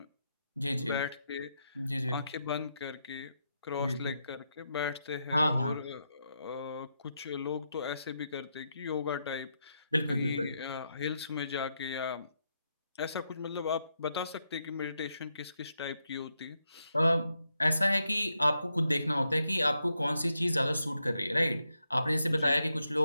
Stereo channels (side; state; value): both; inverted; correlation -0.83